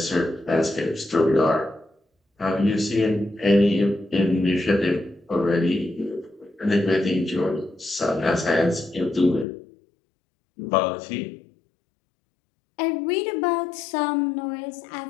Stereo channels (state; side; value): drops out; right; at 9.5 s